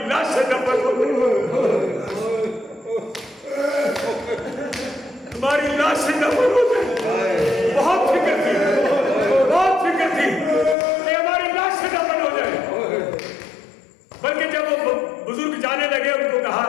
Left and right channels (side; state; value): right; drops out; at 10.8 s